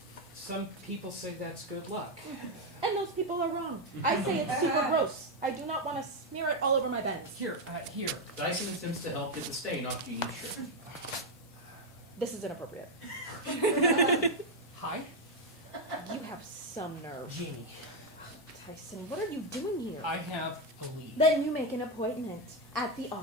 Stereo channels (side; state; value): both; normal; correlation 0.04